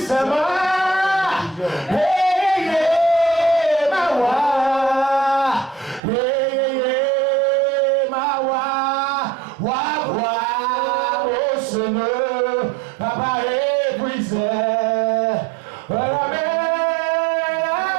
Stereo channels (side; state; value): left; drops out; at 6.0 s